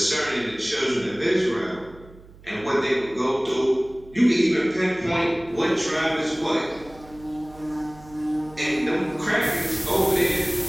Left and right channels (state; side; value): noise; right; hum, 22 dB below the sound